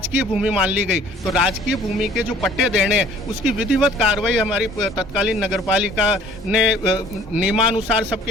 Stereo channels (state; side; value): normal; both; correlation 0.54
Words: भूमि मान ली गई। तो राजकीय भूमि के जो पट्टे देने हैं उसकी विधिवत कार्रवाई हमारी तत्कालीन नगरपालिका ने नियमानुसार